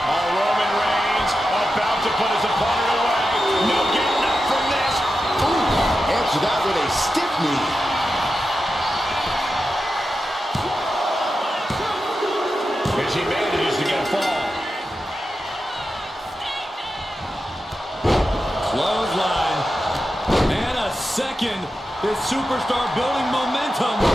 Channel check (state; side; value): normal; both; correlation 0.90